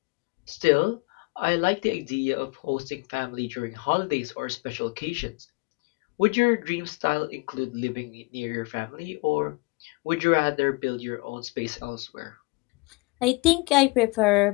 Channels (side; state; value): right; quieter; 26.4 dB